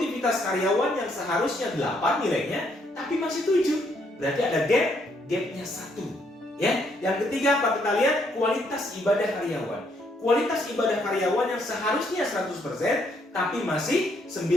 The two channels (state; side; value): normal; both; correlation 0.71